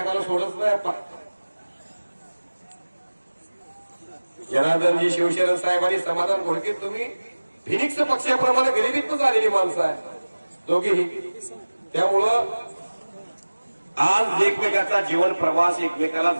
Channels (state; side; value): inverted; both; correlation -1.00